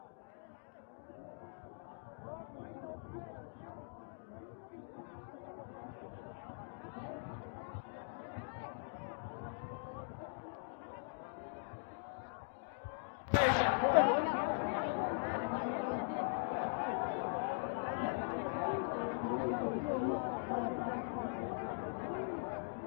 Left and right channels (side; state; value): right; silent; digital silence